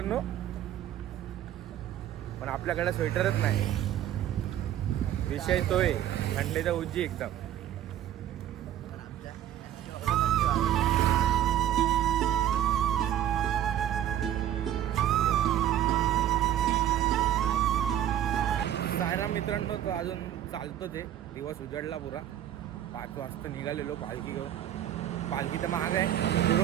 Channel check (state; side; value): quieter; left; 11.5 dB